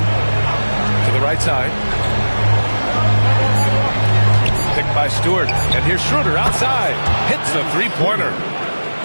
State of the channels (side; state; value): both; inverted; correlation -1.00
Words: to the right side. Picked by Stewart. And here's Schroeder outside. Hits the three-pointer.